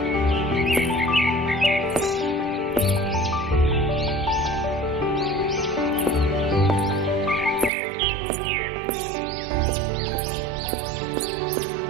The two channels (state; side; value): drops out; left; at 7.7 s